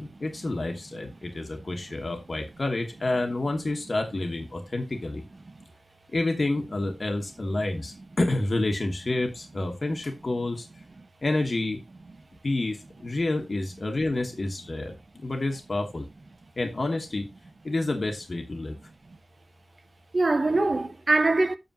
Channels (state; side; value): normal; both; correlation 0.96